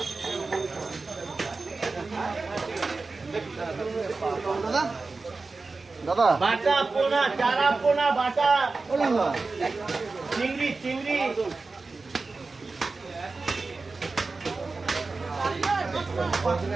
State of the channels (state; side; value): quieter; left; 3.9 dB